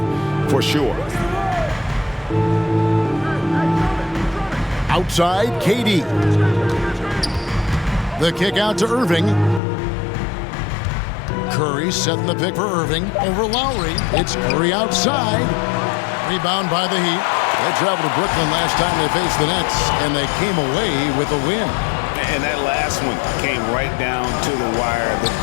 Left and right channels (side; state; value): right; drops out; at 9.6 s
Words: for sure. Outside, KD. The kick out to Irving. Curry setting the pick for Irving over Lowry. It's Curry outside. Rebound by the Heat. They traveled to Brooklyn last time they faced the Nets, and they came away with a win. And that last one came right down to the wire. The